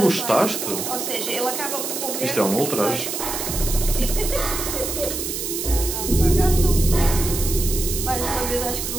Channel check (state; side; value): noise; right; hiss, 4 dB below the sound